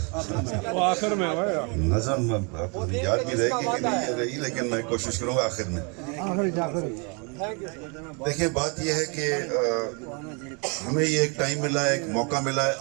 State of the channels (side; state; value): left; quieter; 33.8 dB